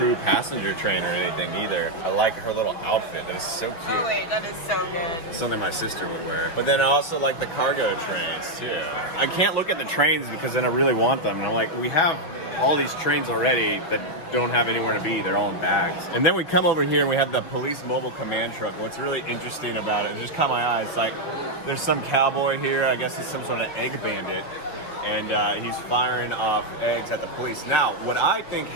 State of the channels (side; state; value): right; late; 6.3 ms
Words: passenger train or anything either. I like her little outfit. That is so cute. Oh wait, that is so good. It's something my sister would wear. But then I also like the cargo trains too. I can't look at the trains because then I really want them. And I'm like, we have all these trains already that don't have anywhere to be. They're all in bags. And then we come over here and we have the police mobile command truck. What's really interesting about it, just caught my eye, it's like there's some cowboy here. I guess it's some sort of egg bandit. And he's firing off eggs at the police. Now, what I think